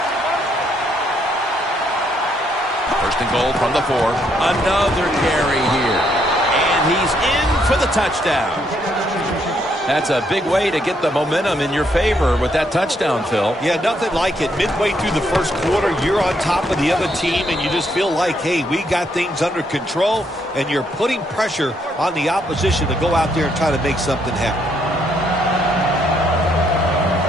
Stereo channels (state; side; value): normal; both; correlation 0.73